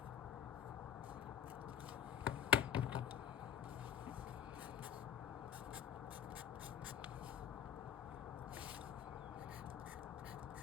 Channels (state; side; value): quieter; right; 9.8 dB